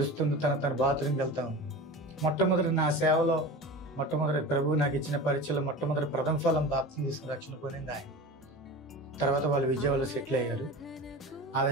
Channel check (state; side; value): normal; both; correlation 0.32